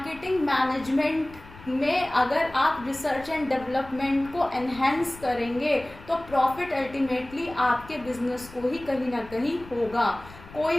मैनेजमेंट में अगर आप रिसर्च एंड डेवलपमेंट को एनहेंस करेंगे तो प्रॉफिट अल्टीमेटली आपके बिजनेस को ही कहीं ना कहीं होगा।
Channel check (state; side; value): noise; left; rumble, 19 dB below the sound